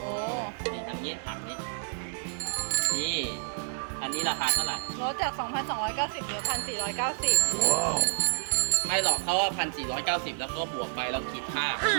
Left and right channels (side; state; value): left; silent; digital silence